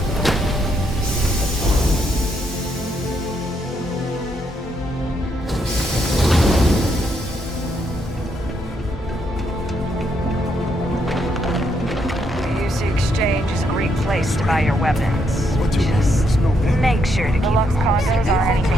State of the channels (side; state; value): both; normal; correlation 0.76